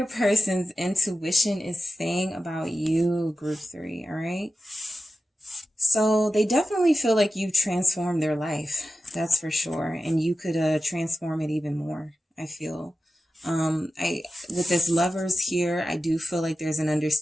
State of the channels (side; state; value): both; normal; correlation 0.92